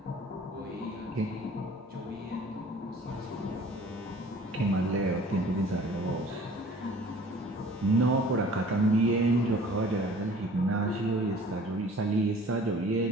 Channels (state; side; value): normal; both; correlation 0.49